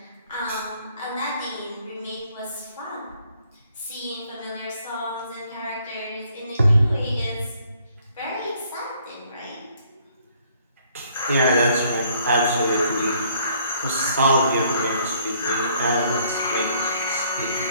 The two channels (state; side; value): inverted; both; correlation -0.64